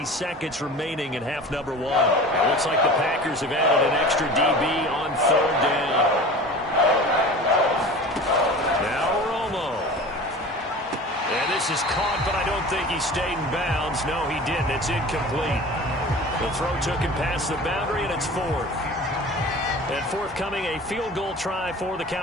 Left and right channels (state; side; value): normal; both; correlation 0.38